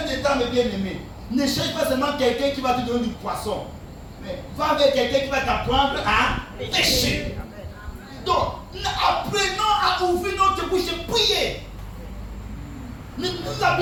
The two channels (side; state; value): both; identical; correlation 1.00